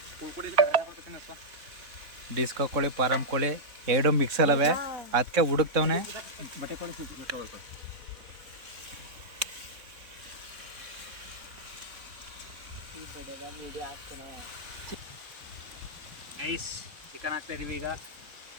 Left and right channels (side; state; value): left; late; 3.6 ms